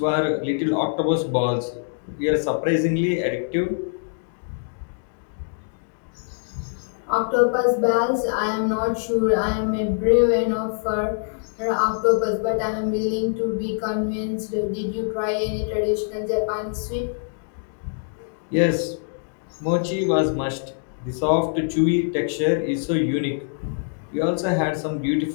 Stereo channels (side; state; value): right; silent; digital silence